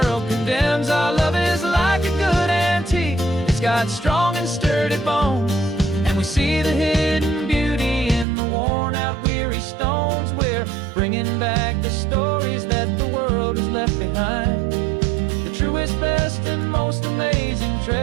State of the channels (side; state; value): left; drops out; at 8.2 s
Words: condemns. Our love is like a good antique, it's got strong and sturdy bones, and we see the hidden beauty in the worn-out, weary stones. We're bringing back the stories that the world has left behind, the truest, best, and most amazing